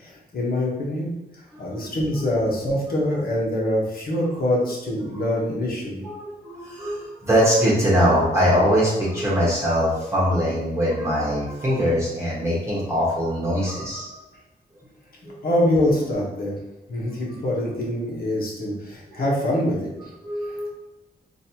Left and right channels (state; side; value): normal; both; correlation 0.60